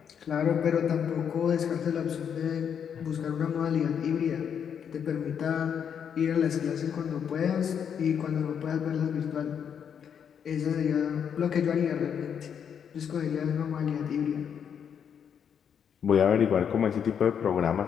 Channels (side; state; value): right; quieter; 7.8 dB